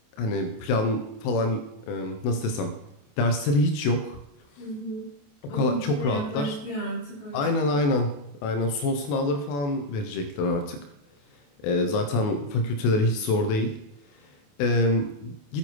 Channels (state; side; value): late; right; 28 ms